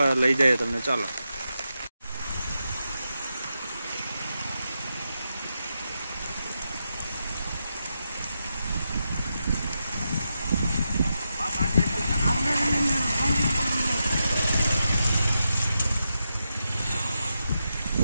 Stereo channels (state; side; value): inverted; both; correlation -0.87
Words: લઈ જાય તમને। ચાલો